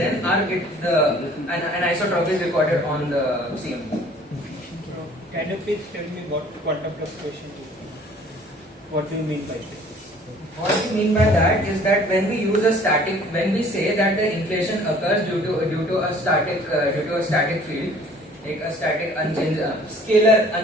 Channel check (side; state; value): both; normal; correlation 0.53